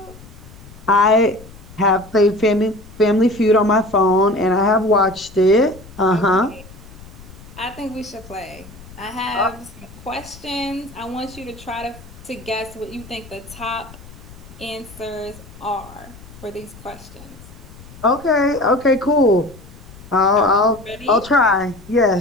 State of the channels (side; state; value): left; noise; rumble, 19 dB below the sound